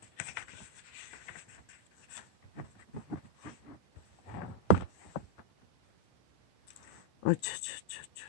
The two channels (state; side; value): normal; both; correlation 0.02